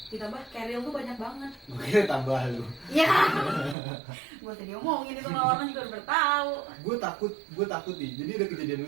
Ditambah carrier tuh banyak banget. Gue kira tambah lu. Ya. Gue tadi omongin itu sama orang juga udah bertahu. Gue takut nih. Jadi ada kejadian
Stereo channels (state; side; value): drops out; left; at 3.8 s